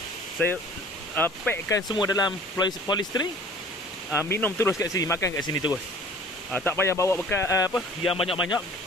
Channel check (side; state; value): both; normal; correlation 0.48